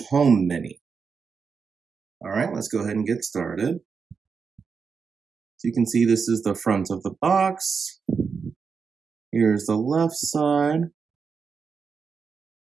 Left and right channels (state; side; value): quieter; left; 5.6 dB